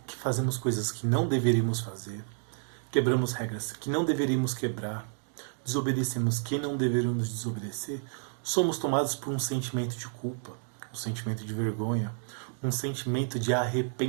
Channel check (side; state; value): left; silent; 58 dB below the other